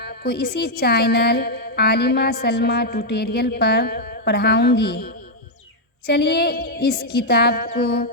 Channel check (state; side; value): normal; both; correlation -0.03